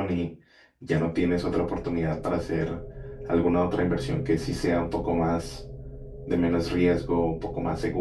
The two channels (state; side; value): identical; both; correlation 1.00